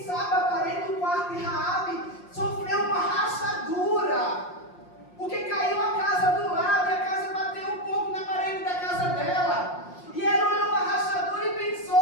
sabe a parede do quarto de Raabe sofreu uma rachadura, porque caiu a casa do lado e a casa bateu um pouco na parede da casa dela. E ela olhou a rachadura e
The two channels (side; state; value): right; late; 5.6 ms